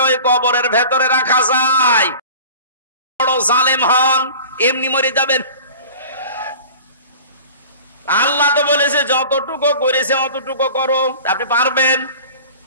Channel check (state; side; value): inverted; both; correlation -0.41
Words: ওই কবরের ভেতরে রাখা যায়, বড় জালেম হন, এমনি মরে যাবেন। আল্লাহ তো বলেছে যতটুকু করেছে অতটুকু করো, আপনি পারবেন।